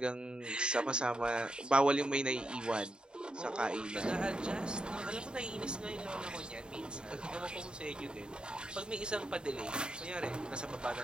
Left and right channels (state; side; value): late; left; 0.049 ms